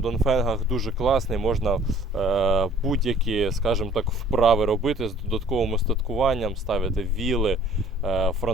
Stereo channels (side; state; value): both; normal; correlation 0.54